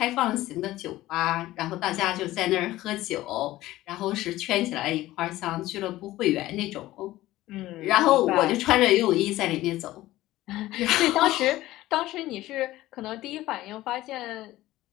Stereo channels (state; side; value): quieter; right; 16.3 dB